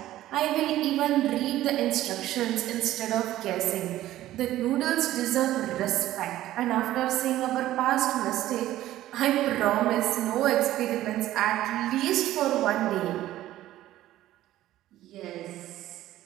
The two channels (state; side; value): quieter; left; 14.3 dB